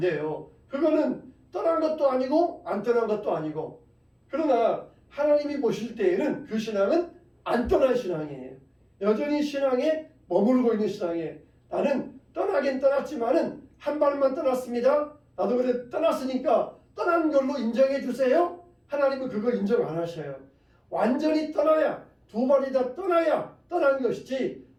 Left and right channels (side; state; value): both; identical; correlation 1.00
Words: 그거는 떠난 것도 아니고 안 떠난 것도 아니고, 그러나 하나님이 보실 때에는 그 신앙은 안 떠난 신앙이에요. 여전히 신앙에 머물고 있는 신앙이에요. 나는 떠나긴 떠났지만은 한 발만 떠났습니다. 나도 그래 떠났으니까 떠난 걸로 인정해 주세요. 하나님은 그거 인정 안 하셔요. 완전히 떠나야, 두 발이 다 떠나야 떠난 것이지,